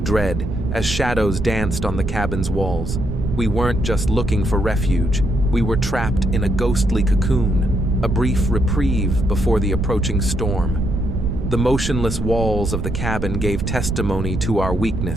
dread as shadows danced on the cabin's walls. We weren't just looking for refuge, we were trapped in a ghostly cocoon, a brief reprieve before the approaching storm. The motionless walls of the cabin gave testimony to our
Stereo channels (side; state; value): right; noise; rumble, 5 dB below the sound